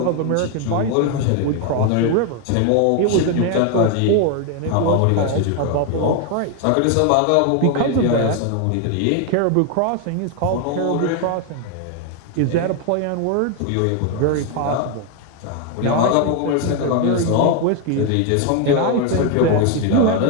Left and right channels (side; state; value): both; different; correlation 0.01